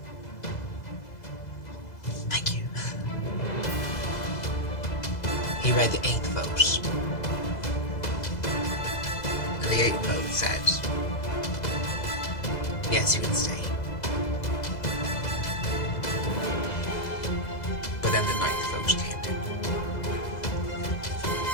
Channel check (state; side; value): late; right; 2.0 ms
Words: Thank you. He read the 8th vote. And the 8th vote said, yes, you can stay. But then the 9th vote came in.